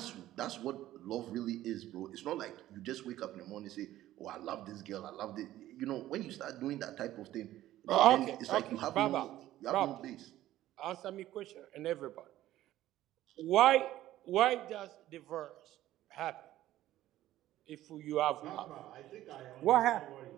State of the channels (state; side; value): quieter; left; 14.2 dB